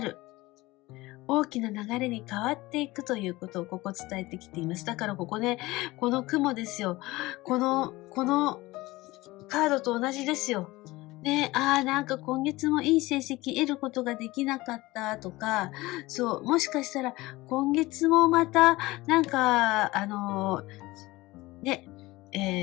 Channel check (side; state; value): right; quieter; 19.9 dB